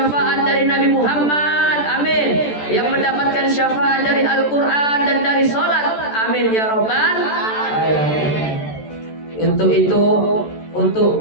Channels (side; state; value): right; late; 14 ms